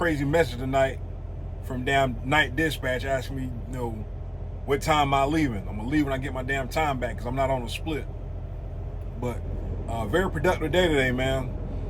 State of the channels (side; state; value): both; identical; correlation 1.00